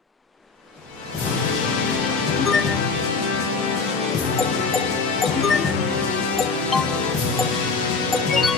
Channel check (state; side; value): quieter; right; 4.4 dB